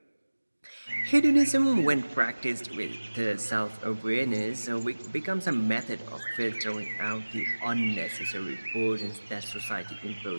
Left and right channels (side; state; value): both; inverted; correlation -1.00